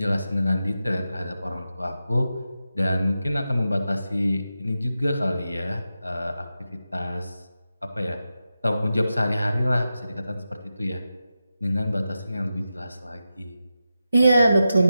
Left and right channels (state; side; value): inverted; both; correlation -0.91